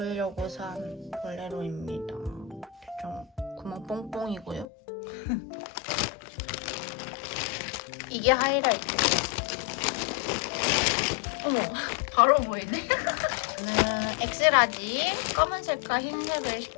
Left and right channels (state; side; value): drops out; right; at 4.7 s